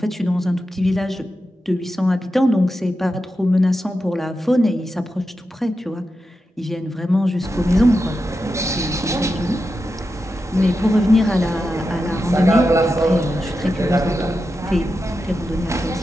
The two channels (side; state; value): both; normal; correlation 0.89